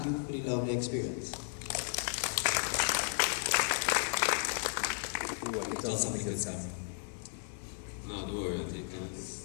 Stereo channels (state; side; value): silent; right; 55 dB below the other